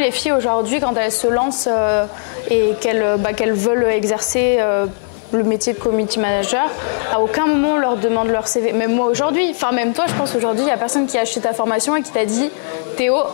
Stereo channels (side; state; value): right; silent; digital silence